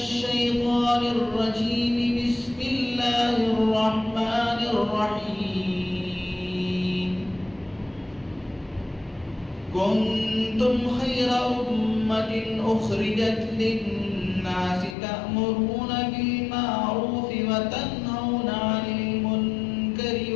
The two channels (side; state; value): right; drops out; at 15.0 s